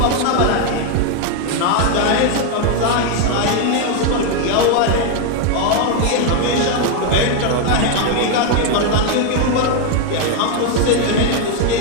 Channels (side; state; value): both; different; correlation 0.01